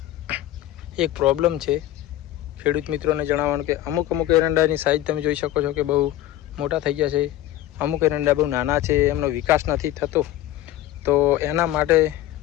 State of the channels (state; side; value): quieter; right; 14.0 dB